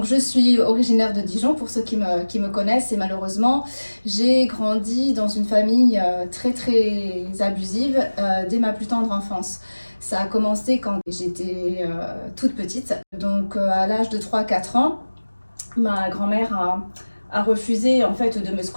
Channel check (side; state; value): both; inverted; correlation -1.00